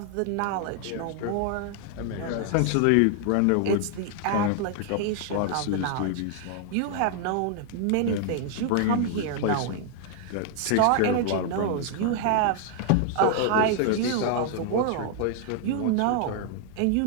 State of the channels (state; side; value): different; both; correlation 0.00